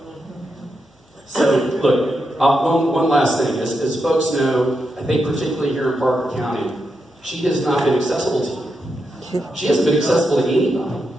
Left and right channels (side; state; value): both; normal; correlation 0.85